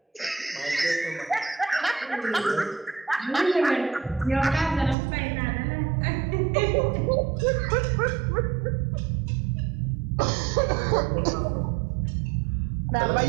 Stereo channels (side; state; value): left; drops out; at 5.0 s